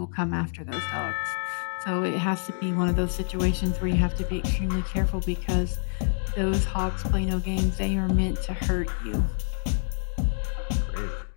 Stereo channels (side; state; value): right; silent; digital silence